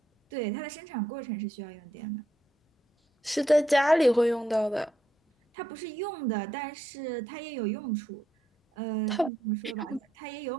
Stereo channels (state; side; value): normal; both; correlation 0.78